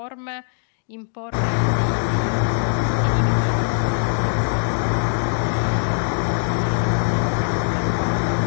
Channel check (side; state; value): right; silent; digital silence